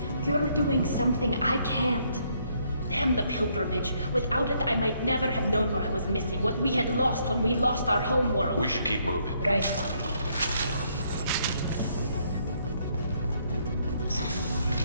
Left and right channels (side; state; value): both; inverted; correlation -0.71